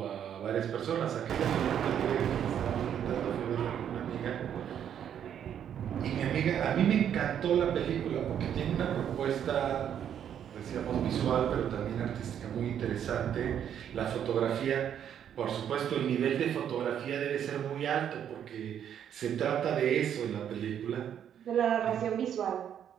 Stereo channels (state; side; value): quieter; left; 9.3 dB